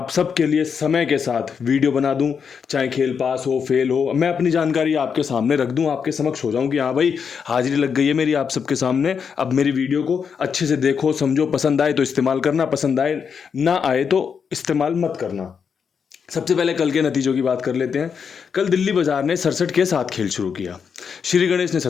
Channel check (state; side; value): quieter; right; 6.5 dB